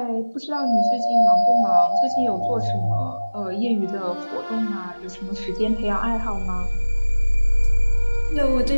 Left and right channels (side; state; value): both; inverted; correlation -1.00